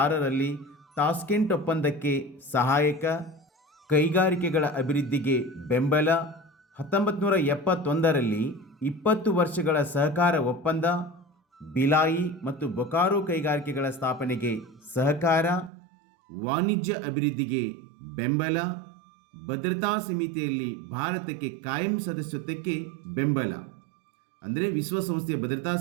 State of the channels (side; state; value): left; drops out; at 15.7 s